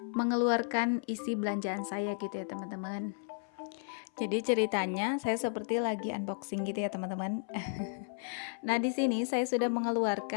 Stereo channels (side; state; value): right; silent; 55 dB below the other